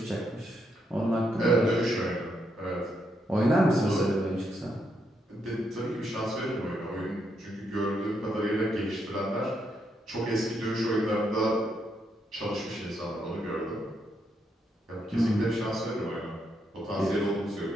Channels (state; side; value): normal; both; correlation 0.78